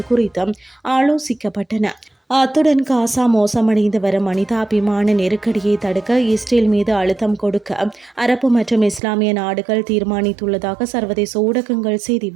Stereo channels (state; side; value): drops out; left; at 9.0 s